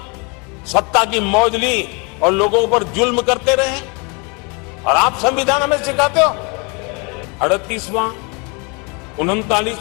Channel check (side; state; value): right; quieter; 31.6 dB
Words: सत्ता की मौज ली और लोगों पर जुल्म करते रहे? और आप संविधान हमें सिखाते हो 38वां,